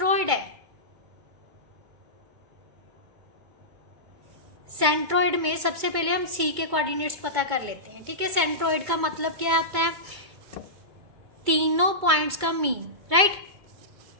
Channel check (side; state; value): left; late; 2.2 ms